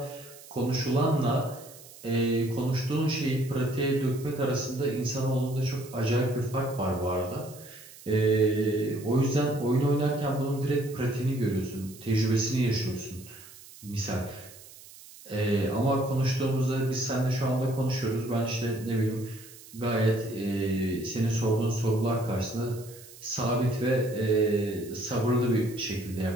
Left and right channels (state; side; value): noise; right; hiss, 19 dB below the sound